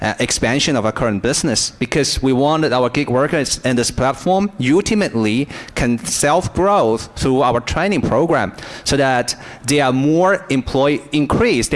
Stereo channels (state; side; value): identical; both; correlation 1.00